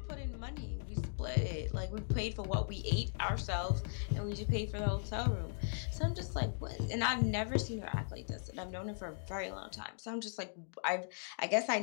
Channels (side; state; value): right; silent; digital silence